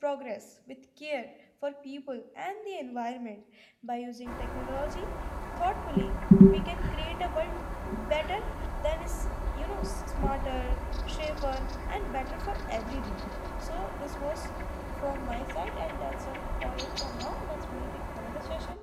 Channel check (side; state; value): both; identical; correlation 1.00